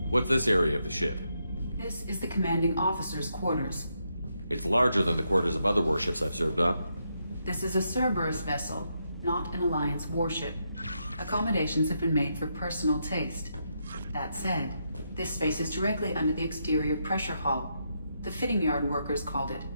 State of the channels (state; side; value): inverted; both; correlation -0.81